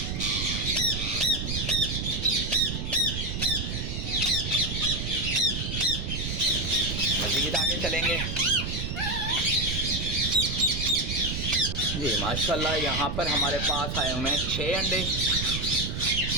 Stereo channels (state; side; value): noise; right; rumble, 3 dB below the sound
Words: मज़ीद आगे चलेंगे जी। माशाल्लाह यहाँ पर हमारे पास आए हुए हैं 6 अंडे।